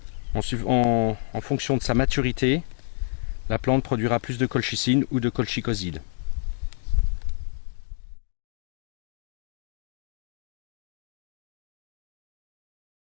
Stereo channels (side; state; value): right; silent; 59 dB below the other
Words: En fonction de sa maturité, la plante produira plus de colchicine ou de colchicoside.